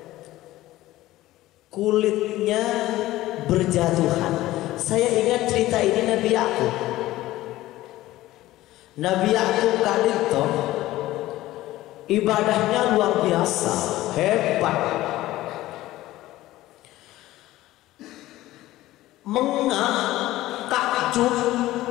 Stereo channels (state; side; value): quieter; right; 16.2 dB